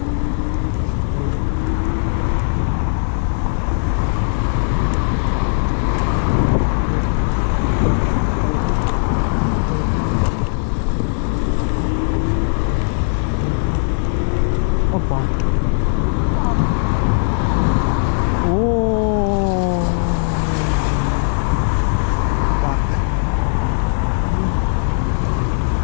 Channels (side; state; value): right; silent; digital silence